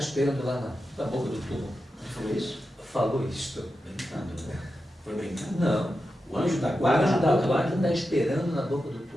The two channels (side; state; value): both; normal; correlation 0.90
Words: lá na boca do túmulo. Ele falou isso? Falou isso. Brincando, né? Foi brincando? Não. O anjo da O guarda anjo da guarda está esperando na boca do